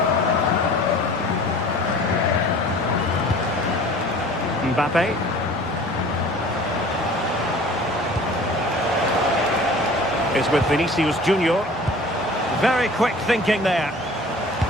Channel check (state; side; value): normal; both; correlation 0.45